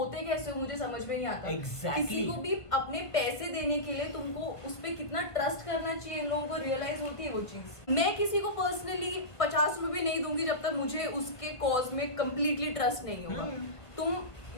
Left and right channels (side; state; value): right; late; 1.5 ms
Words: कैसे हो मुझे समझ में नहीं आता। Exactly. किसी को भी अपने पैसे देने के लिए तुमको उस पे कितना ट्रस्ट करना चाहिए, इन लोगों को रियलाइज होती है वो चीज। मैं किसी को पर्सनली 50 रुपए नहीं दूंगी जब तक मुझे उसके कॉज में कंप्लीटली ट्रस्ट नहीं होगा। तुम